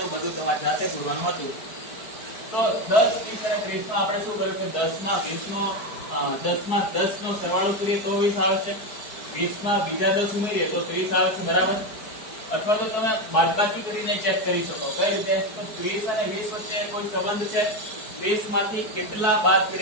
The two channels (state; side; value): late; right; 4.6 ms